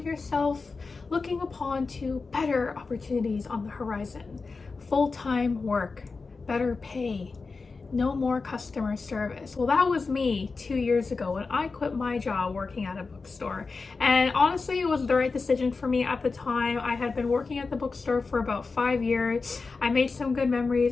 yourself looking upon to better opportunities on the horizon. Full-time work, better pay, no more customer service. Well, that was me 2 years ago when I quit my job working at a bookstore. And honestly, it was the right decision for me at the time. I had been working at the bookstore for about 5 years. I made some good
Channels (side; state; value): right; quieter; 4.3 dB